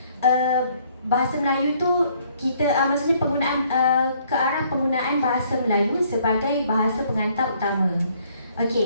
bahasa Melayu tu kita maksudnya penggunaan ke arah penggunaan bahasa Melayu sebagai bahasa pengantar utama.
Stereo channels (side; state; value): both; inverted; correlation -0.64